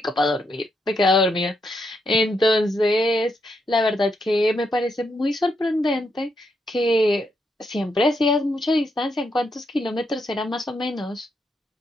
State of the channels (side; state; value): both; normal; correlation 0.80